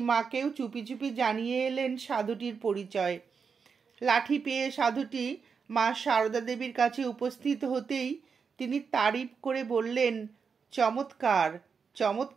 চুপি চুপি জানিয়ে এলেন সাধুটির পরিচয়। লাঠি পেয়ে সাধুটি মা সারদা দেবীর কাছে উপস্থিত হতেই তিনি তারিফ করে বললেন, চমৎকার,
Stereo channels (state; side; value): quieter; left; 5.8 dB